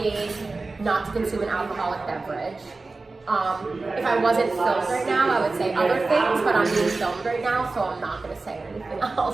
not to consume an alcoholic beverage. If I wasn't filmed right now, I would say other things, but I'm being filmed right now, so I'm not going to say anything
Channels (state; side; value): quieter; left; 3.6 dB